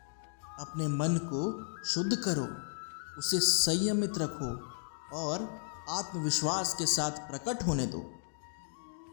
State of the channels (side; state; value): right; silent; digital silence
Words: अपने मन को शुद्ध करो, उसे संयमित रखो और आत्मविश्वास के साथ प्रकट होने दो।